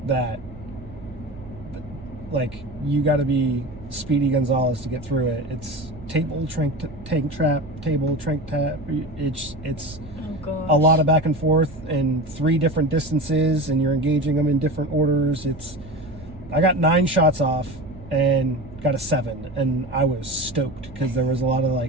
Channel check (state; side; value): noise; right; hum, 18 dB below the sound